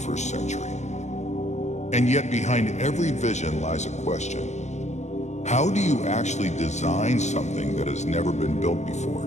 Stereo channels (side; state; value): right; late; 0.33 ms